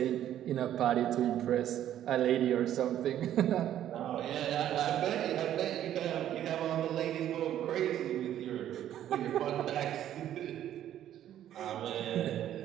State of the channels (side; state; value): left; quieter; 11.4 dB